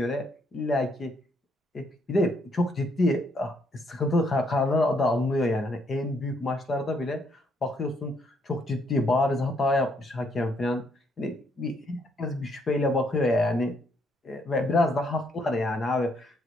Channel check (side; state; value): both; normal; correlation 0.71